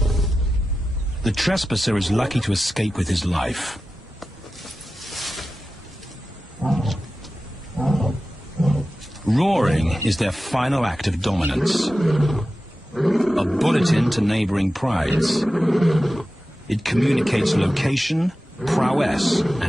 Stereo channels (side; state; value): both; normal; correlation 0.94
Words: The trespasser is lucky to escape with his life. Roaring is their final act of dominance. A bulletin to neighboring prides. It communicates location, prowess,